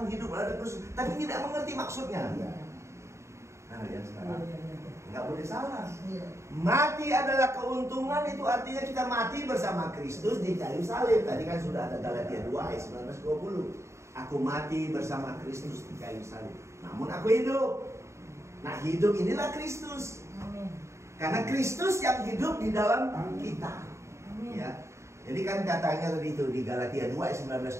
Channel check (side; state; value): left; late; 0.14 ms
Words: hidup adalah Kristus, tapi tidak mengerti maksudnya. Nah, ya sekarang nggak boleh salah. Mati adalah keuntungan itu artinya kita mati bersama Kristus di kayu salib. Tadi kan sudah ada Galatia 2 ayat 19-20. Aku mati bersama Kristus di kayu salib. Namun aku hidup. Nah, hidup inilah Kristus. Karena Kristus yang hidup di dalam kita. Ya. Jadi kan katanya tadi itu di Galatia 2 ayat